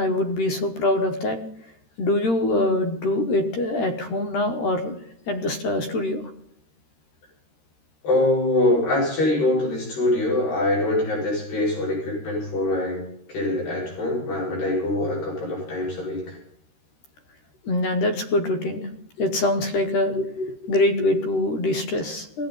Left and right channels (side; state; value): right; late; 13 ms